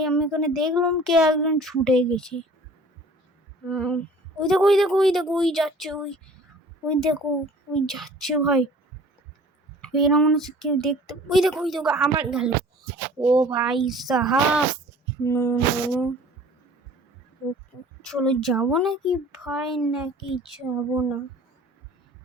আমি ওখানে দেখলাম কে একজন ছুটে গেছে। ওই দেখো ওই যাচ্ছে, ওই দেখো ওই যাচ্ছে ভাই। এরা মনে হচ্ছে কেউ দেখতে। ওই দেখো আমার গেল। ও ভাই সাহাব, চলো যাবো নাকি ভাই, নাকি যাবো না?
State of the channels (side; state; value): both; normal; correlation 0.48